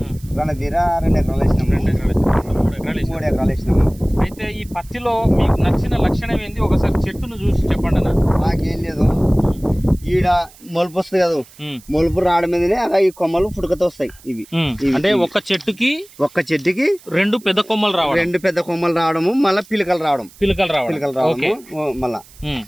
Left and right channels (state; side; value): noise; right; hiss, 24 dB below the sound